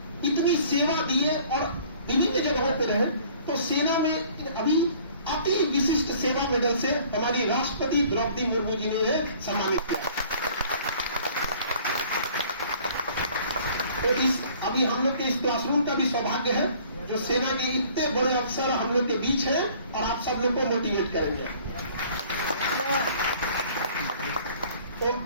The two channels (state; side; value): inverted; both; correlation -0.53